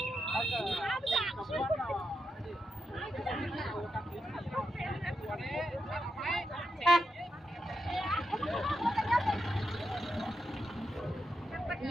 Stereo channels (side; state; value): both; normal; correlation 0.85